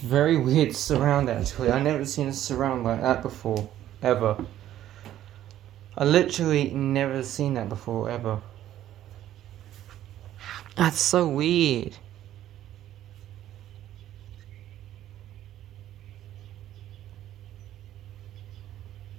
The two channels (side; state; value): left; quieter; 12.4 dB